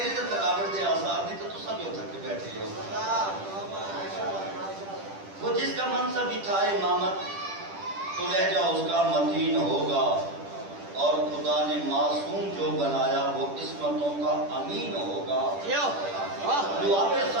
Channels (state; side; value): late; left; 10 ms